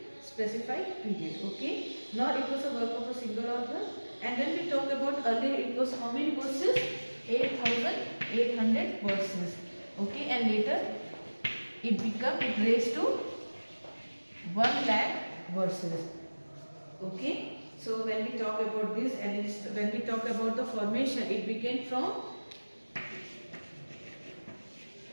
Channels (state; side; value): inverted; both; correlation -1.00